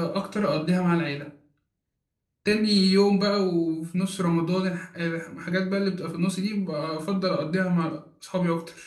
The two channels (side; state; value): both; identical; correlation 1.00